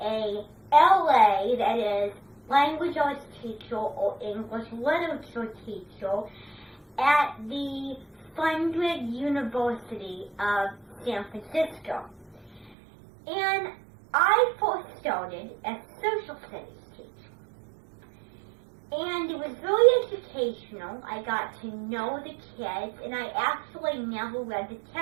LA, that is, Language Arts teacher or English Literature teacher at the Fundred University of San Francisco. And I first started as a social studies teacher. And it was really educational. I got to know the kids, and I actually never read the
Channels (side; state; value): left; drops out; at 12.7 s